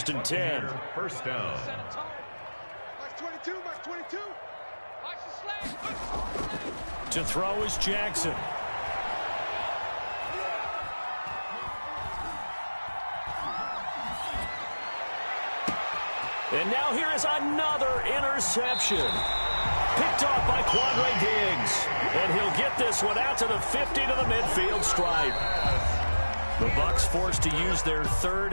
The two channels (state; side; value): inverted; both; correlation -1.00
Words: and 10. 1st down. Mark 22, Mark 22. Watch the slash. To throw is Jackson. And now here is another interception. Picked off by Quandre Diggs. And he'll get this one out to the 50 to the midfield stripe. The Bucs forced to use their